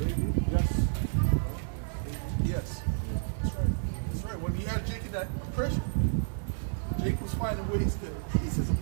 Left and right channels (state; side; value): silent; left; digital silence